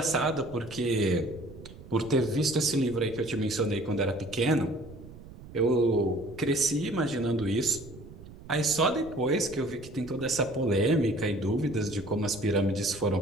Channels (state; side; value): noise; right; rumble, 17 dB below the sound